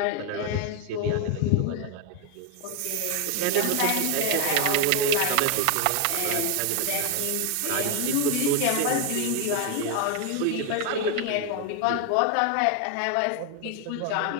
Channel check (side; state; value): both; different; correlation 0.01